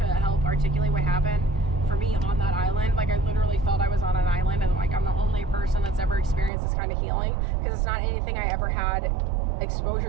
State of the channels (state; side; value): drops out; left; at 6.5 s